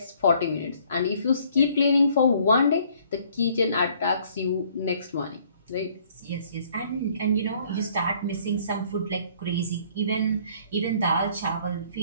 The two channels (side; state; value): both; inverted; correlation -0.60